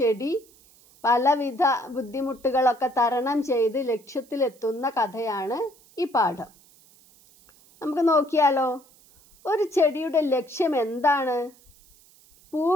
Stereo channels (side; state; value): right; noise; hiss, 28 dB below the sound